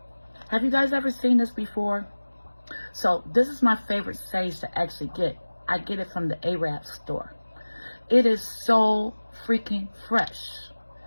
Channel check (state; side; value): inverted; both; correlation -1.00